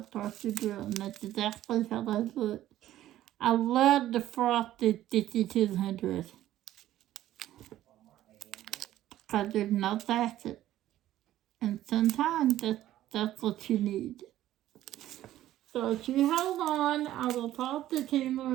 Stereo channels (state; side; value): quieter; left; 13.5 dB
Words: frosted drill, and that's exactly how they look. I love the frosted 5200 because there's no facet, and sometimes that's what you need. So if you hold on, I will pause the